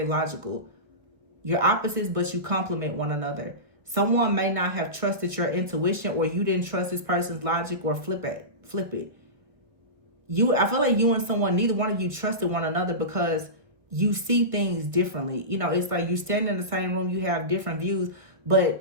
logical. You're opposites, but you complement one another. Someone may not have trusted your intuition, or you didn't trust this person's logic, or flip it. I feel like you and someone, neither one of you trusted one another because you see things differently. You know, it's like you stand in the same room, you have different views,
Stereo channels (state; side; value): late; left; 1.5 ms